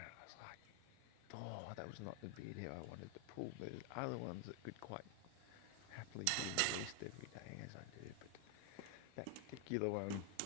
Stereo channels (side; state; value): both; different; correlation 0.00